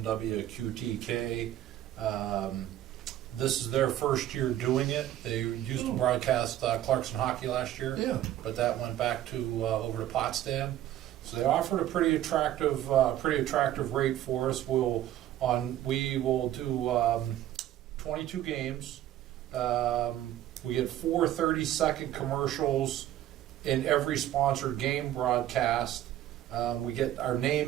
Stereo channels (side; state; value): left; quieter; 12.8 dB